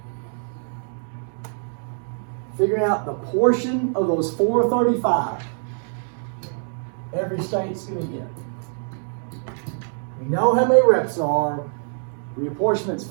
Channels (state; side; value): silent; left; digital silence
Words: Figuring out the portion of those 435 every state's going to get. We know how many reps are. Reapportionment's